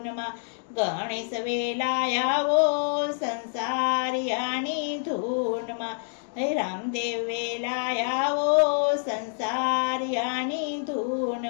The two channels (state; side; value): silent; right; digital silence